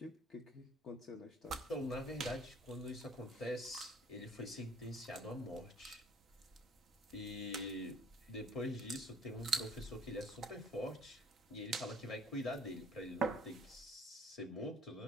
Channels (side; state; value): both; normal; correlation 0.56